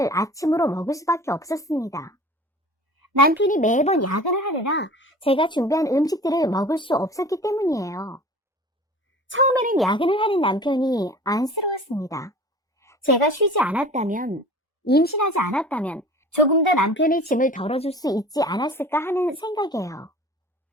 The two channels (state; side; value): normal; both; correlation 0.42